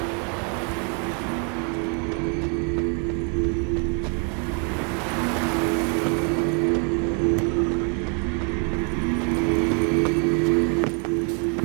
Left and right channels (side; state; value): left; quieter; 38.8 dB